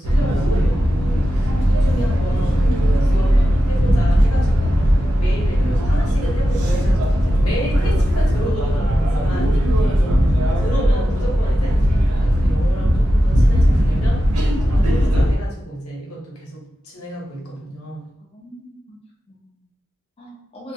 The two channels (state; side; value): normal; both; correlation 0.92